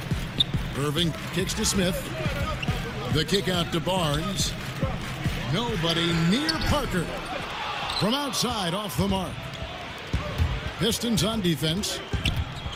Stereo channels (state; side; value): identical; both; correlation 1.00